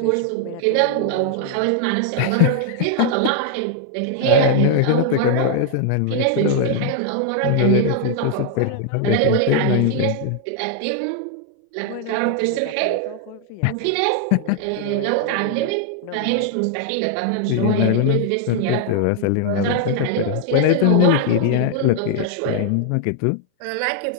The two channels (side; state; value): both; different; correlation 0.00